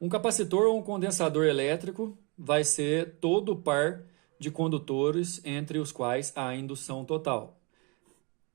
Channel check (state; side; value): quieter; left; 30.9 dB